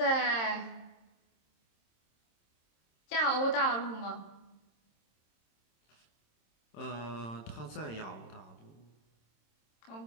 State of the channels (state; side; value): late; right; 26 ms